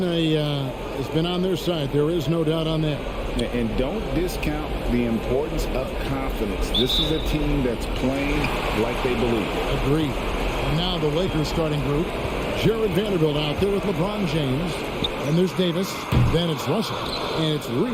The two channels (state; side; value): identical; both; correlation 1.00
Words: on their side. There is no doubt on that. And don't discount the importance of confidence. This is a team that's playing like they believe. Agreed. And now the Lakers starting group. Jared Vanderbilt out there with LeBron James. And there's Davis. Then it's Russell. And it's